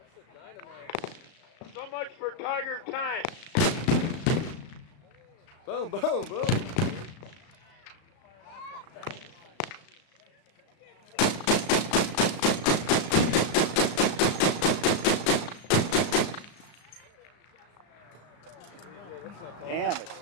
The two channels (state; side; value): late; right; 35 ms